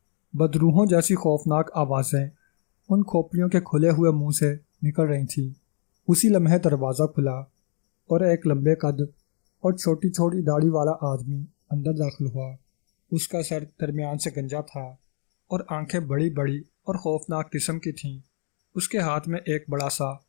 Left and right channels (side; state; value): right; silent; digital silence